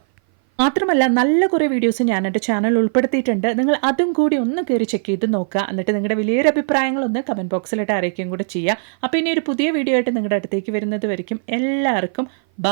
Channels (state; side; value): silent; left; 58 dB below the other